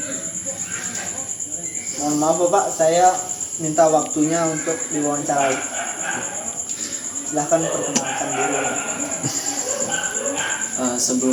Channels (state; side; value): identical; both; correlation 1.00